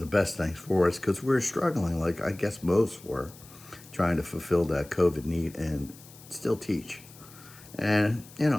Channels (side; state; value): left; noise; hiss, 21 dB below the sound